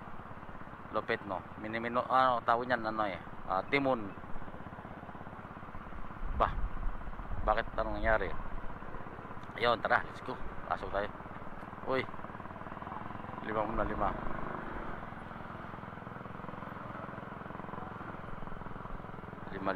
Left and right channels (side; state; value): both; identical; correlation 1.00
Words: lupit no. Minimino tawag niyan timon. Bakit anong nangyari? Ayun, tara, let's go. Pasok tayo. Uy, 5 muna 5